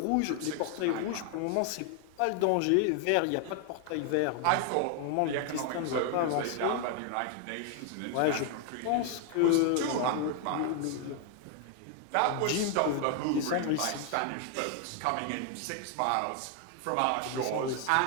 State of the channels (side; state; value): both; different; correlation 0.00